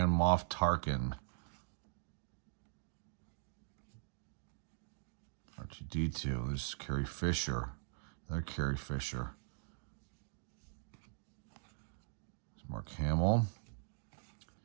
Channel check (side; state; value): left; silent; digital silence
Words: Moff Tarkin. R2-D2. This is Carrie Fisher. Another Carrie Fisher. There's Mark Hamill.